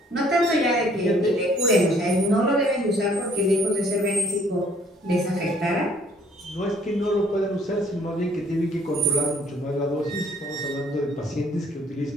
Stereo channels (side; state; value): both; normal; correlation 0.60